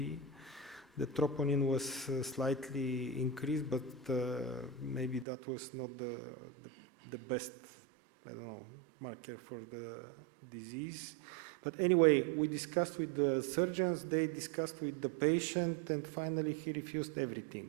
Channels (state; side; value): drops out; left; at 5.2 s